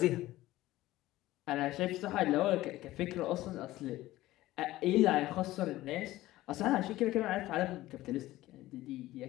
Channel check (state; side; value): quieter; right; 16.5 dB